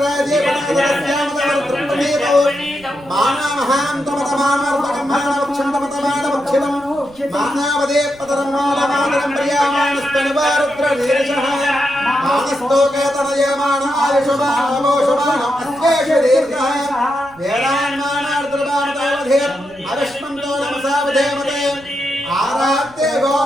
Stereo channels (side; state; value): right; noise; rumble, 26 dB below the sound